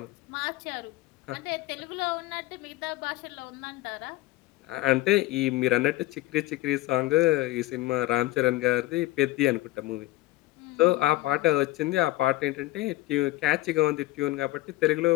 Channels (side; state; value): right; quieter; 17.8 dB